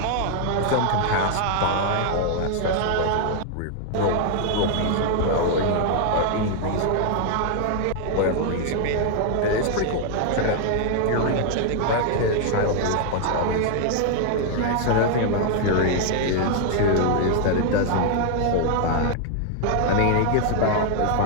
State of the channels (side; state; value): both; different; correlation 0.00